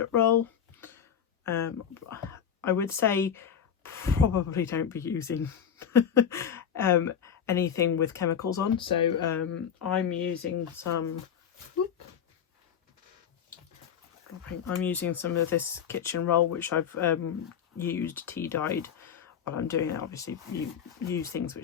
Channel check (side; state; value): right; quieter; 8.2 dB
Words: roll. I would say probably don't be using anything with chemicals on, so I'm using some of this kitchen roll which I've used tea dyed while I'm doing it. Obviously you use things